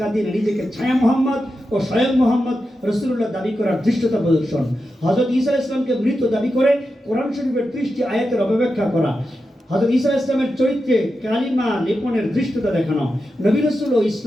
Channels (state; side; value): normal; both; correlation 0.89